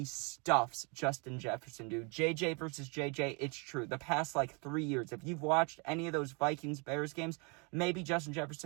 stuffs Justin Jefferson, dude. JJ versus JJ, it's true. The past, 3 years, if you've watched any of those Vikings-Bears games, maybe Justin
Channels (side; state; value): left; quieter; 32.3 dB